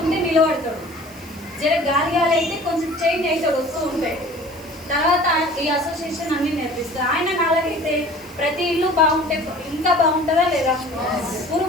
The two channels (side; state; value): right; noise; hiss, 22 dB below the sound